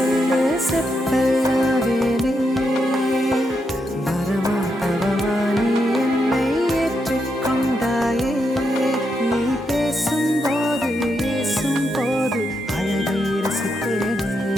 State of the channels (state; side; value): normal; both; correlation 0.82